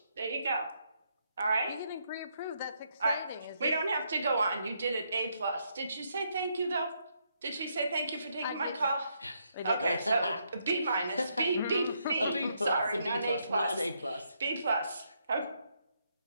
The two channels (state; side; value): inverted; both; correlation -0.76